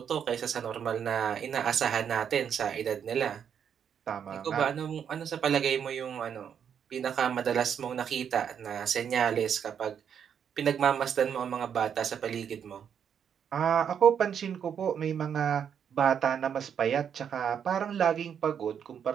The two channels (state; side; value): quieter; left; 8.0 dB